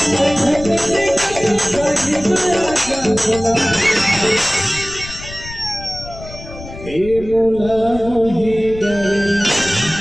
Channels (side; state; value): left; noise; rumble, 14 dB below the sound